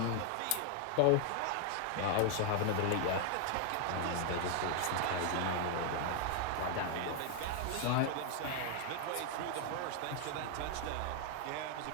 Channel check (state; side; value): different; both; correlation 0.00